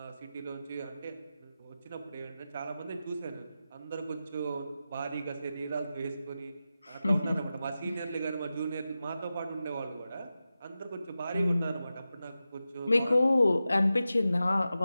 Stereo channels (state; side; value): inverted; both; correlation -0.93